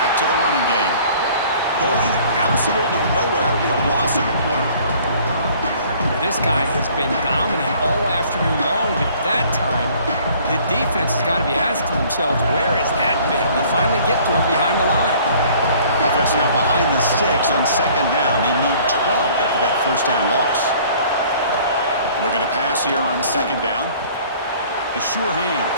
to the running game. Going absolutely nowhere. That would be a loss of a play. This guy has been dominant all afternoon long, but that time, the defense has got to be asking themselves, where has that been? They finally get to him behind the line. Offense now behind the sticks on second down. They need 12 after that first down loss. Looking to pass here on second down. The sure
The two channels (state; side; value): inverted; both; correlation -0.54